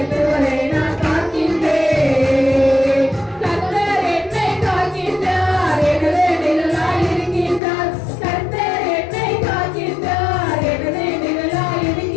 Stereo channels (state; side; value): drops out; right; at 7.6 s